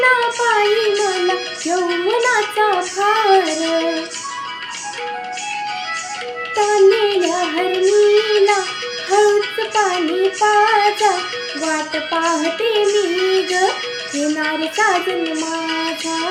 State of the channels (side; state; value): both; identical; correlation 1.00